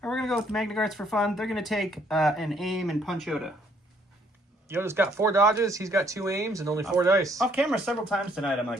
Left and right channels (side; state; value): both; normal; correlation 0.66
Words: All right, we're going to go with the Magna Guards for fun. They're going to take an aim and punch Yoda. Yoda's got 4 dodges, he's got 2 aims, and only 4 dice. Off camera several times tonight, I'm